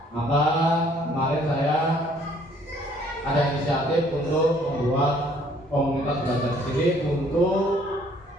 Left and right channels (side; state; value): both; normal; correlation 0.61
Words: Maka kemarin saya ada inisiatif untuk membuat komunitas belajar di sini untuk